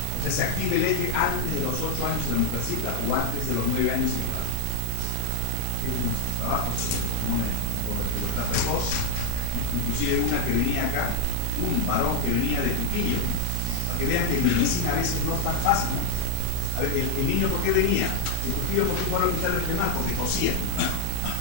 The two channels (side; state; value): both; different; correlation 0.00